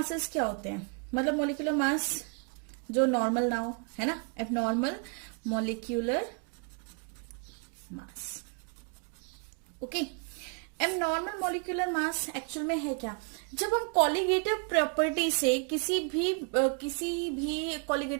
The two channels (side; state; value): left; quieter; 39.2 dB